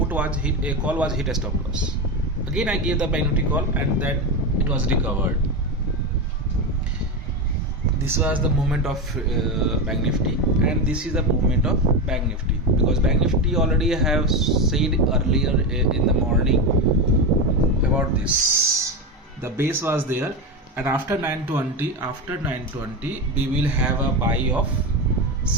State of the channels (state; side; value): normal; both; correlation 0.16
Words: was hit, a call was hit a stop loss. Again I gave the Bank Nifty call, and then it was recovered. This was the movement of Bank Nifty, and this is the movement of Bank Nifty, because Bank Nifty already have said earlier in the morning about this. The base was there, and after 920 we will have a buy of